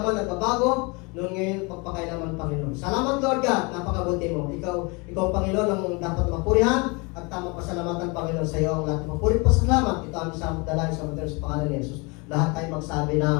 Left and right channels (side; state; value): right; quieter; 29.0 dB